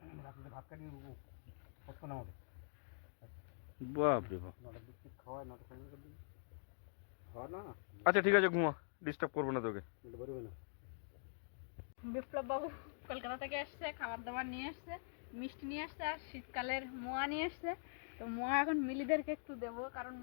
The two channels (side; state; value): right; silent; digital silence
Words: রাত্রিতে ভাত কাটিয়ে পছন্দ আমাকে বাপ রে বাপ। নটার দিক থেকে খাওয়ায়, 9টা 9:30 দিকে খাওয়া না, আচ্ছা ঠিক আছে, ঘুমা, ডিস্টার্ব করবো না তোকে। বলে বেরোবে না। বিপ্লব বাবু কলকাতা থেকে এসছে, খাবার দাবার নিয়ে আসছে, মিষ্টি নিয়ে আসছে, আর শীতকালের মোয়া নিয়ে আসছে। তো মোয়া এখন মিলিদেরকে একটু দেবো, কারণ